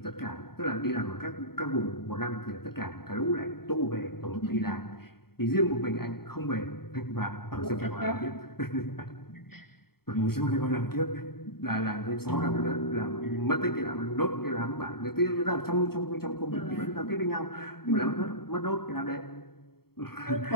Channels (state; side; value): late; right; 0.95 ms